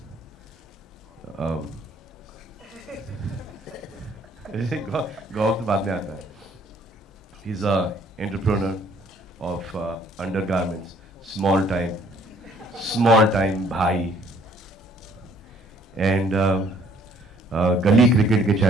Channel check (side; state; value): both; normal; correlation 0.60